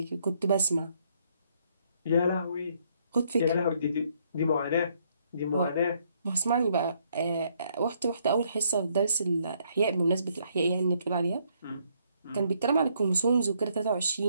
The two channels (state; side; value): inverted; both; correlation -0.70